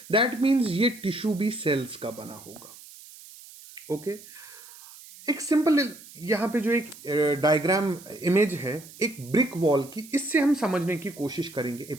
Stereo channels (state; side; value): noise; right; hiss, 19 dB below the sound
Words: दैट मीन्स ये टिश्यू भी सेल्स का बना होगा। ओके एक सिंपल यहाँ पे जो एक डायग्राम इमेज है एक ब्रिक वॉल की, इससे हम समझने की कोशिश करेंगे